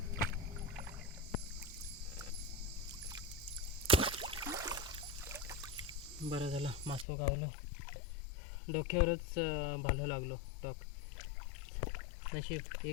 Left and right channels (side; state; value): right; drops out; at 7.1 s